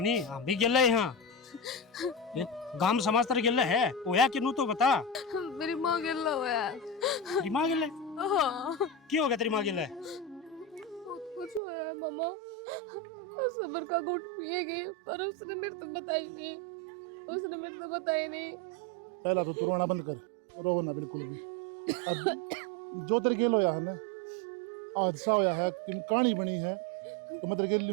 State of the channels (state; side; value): drops out; left; at 11.6 s